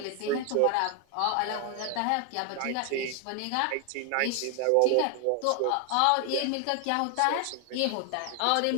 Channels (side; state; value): both; different; correlation 0.00